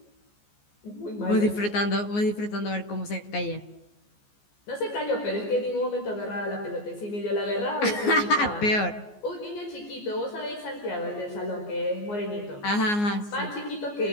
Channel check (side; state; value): right; late; 14 ms